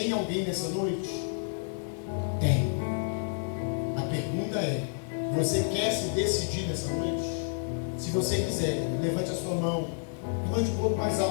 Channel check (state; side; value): silent; right; 58 dB below the other